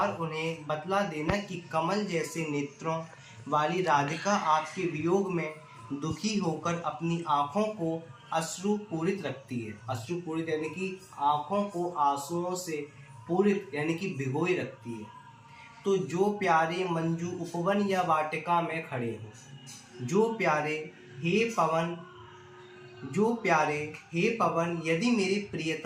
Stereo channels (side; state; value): both; identical; correlation 1.00